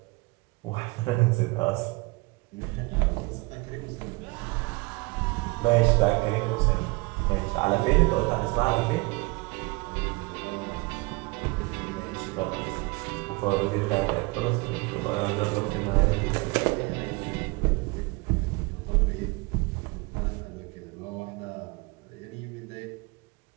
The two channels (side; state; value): left; quieter; 25.8 dB